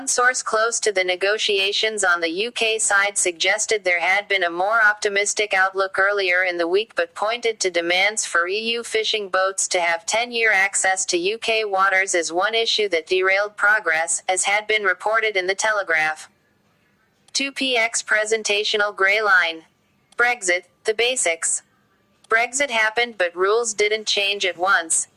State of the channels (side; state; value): both; identical; correlation 1.00